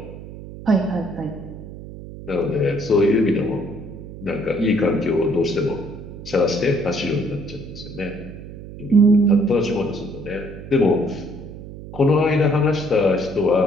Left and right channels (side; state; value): right; noise; hum, 13 dB below the sound